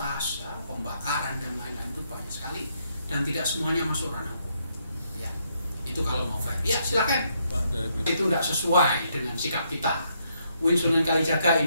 ya, pembakaran dan lain-lain itu banyak sekali dan tidak semuanya masuk ranah hukum. Ya, itu kalau mau fair. Ya silakan. Itu tidak sesuai dengan sikap kita. UIN Sunan Kalijaga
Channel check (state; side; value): inverted; both; correlation -0.75